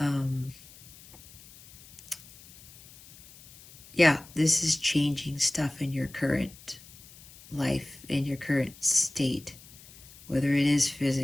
Yeah, this is changing stuff in your current life, in your current state. Whether it is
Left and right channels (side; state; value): left; noise; hiss, 21 dB below the sound